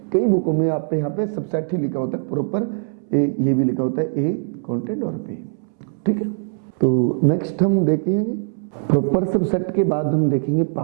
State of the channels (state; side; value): silent; left; 65 dB below the other